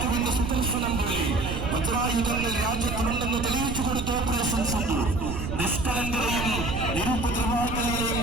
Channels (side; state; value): right; noise; rumble, 5 dB below the sound